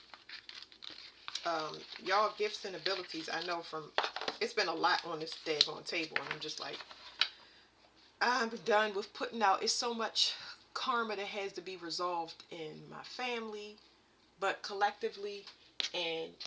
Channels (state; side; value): identical; both; correlation 1.00